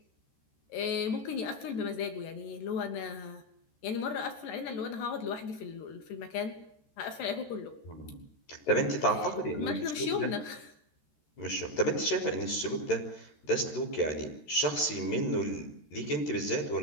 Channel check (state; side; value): late; right; 13 ms